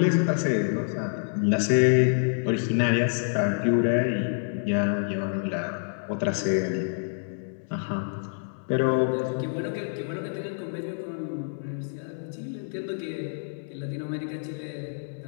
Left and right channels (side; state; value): right; silent; 60 dB below the other